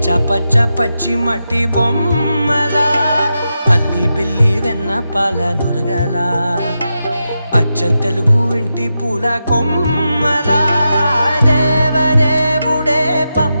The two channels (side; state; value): both; inverted; correlation -0.88